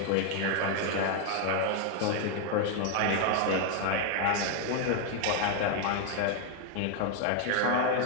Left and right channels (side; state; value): both; different; correlation 0.01